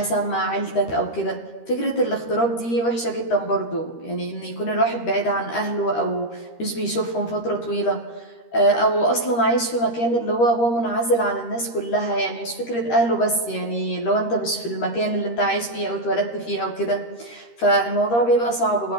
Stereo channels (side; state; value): right; late; 13 ms